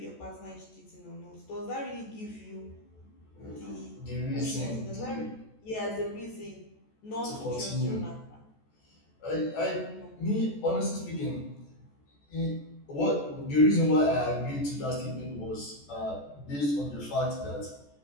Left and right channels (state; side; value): late; right; 14 ms